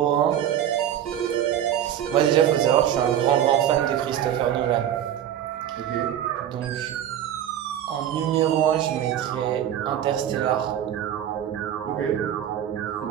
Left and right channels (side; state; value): left; quieter; 10.5 dB